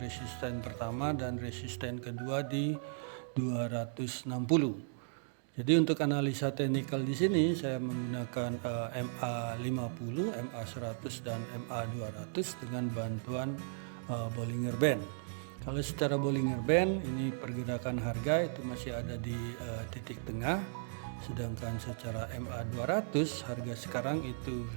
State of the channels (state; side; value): silent; left; digital silence